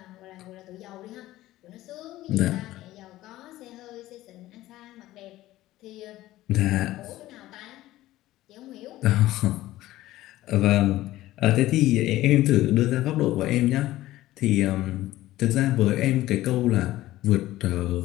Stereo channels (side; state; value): right; quieter; 15.9 dB